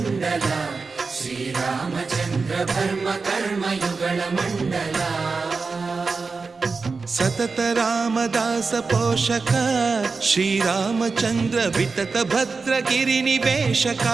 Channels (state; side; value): quieter; left; 4.4 dB